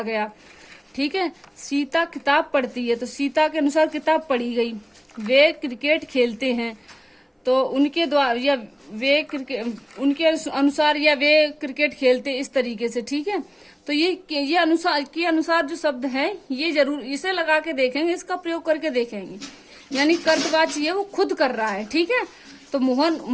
गया। ठीक है। सीता किताब पढ़ती है, तो सीता के अनुसार किताब पढ़ी गई। वे क्रिकेट खेलते हैं, तो उनके द्वारा या वे क्रिकेट उनके अनुसार या वे क्रिकेट खेलते, इस तरीके से। ठीक है। तो ये अनुसार के अनुसार जो शब्द है, ये जरूर इसे लगा के देखेंगे, इसका प्रयोग करके देखेंगे। यानी कर्तवाच्य ये वो खुद कर रहा है। ठीक है। तो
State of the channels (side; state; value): both; identical; correlation 1.00